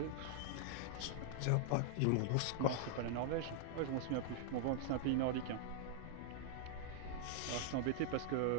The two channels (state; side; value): different; both; correlation -0.01